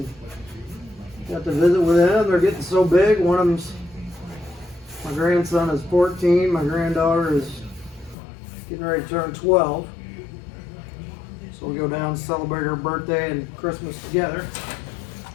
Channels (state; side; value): drops out; right; at 8.2 s